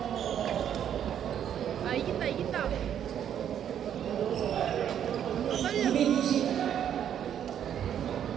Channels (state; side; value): quieter; left; 9.5 dB